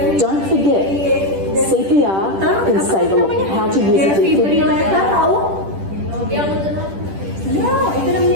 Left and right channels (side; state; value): left; late; 10 ms